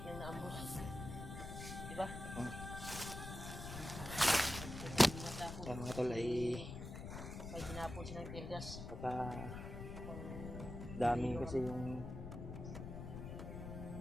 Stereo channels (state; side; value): noise; left; rumble, 7 dB below the sound